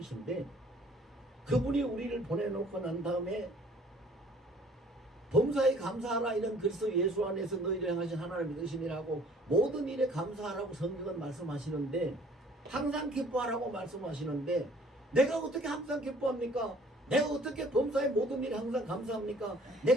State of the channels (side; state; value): both; normal; correlation 0.56